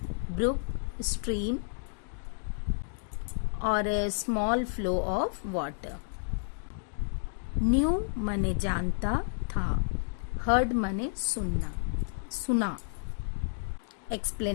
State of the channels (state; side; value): silent; right; digital silence